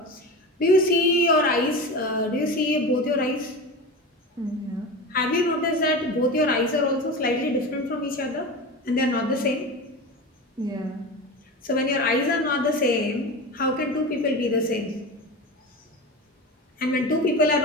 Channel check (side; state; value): both; normal; correlation 0.27